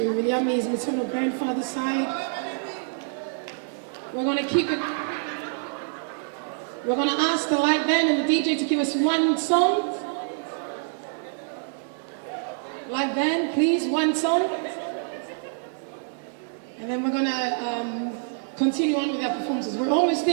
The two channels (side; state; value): left; silent; digital silence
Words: Viliami's maternal grandfather's side. We're going to keep it. We're going to ask the light band and the DJ to give us one song. Light band, please, one song. And then we're going to continue on with our performances. We're almost